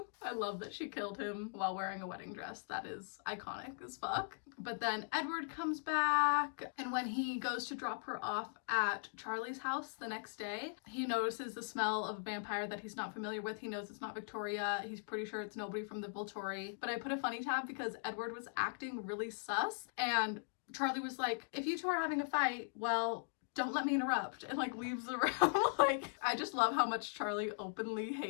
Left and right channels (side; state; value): right; silent; digital silence